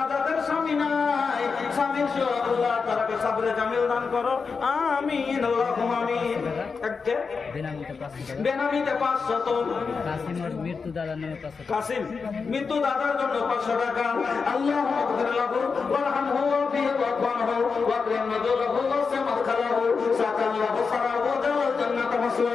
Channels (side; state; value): right; quieter; 5.1 dB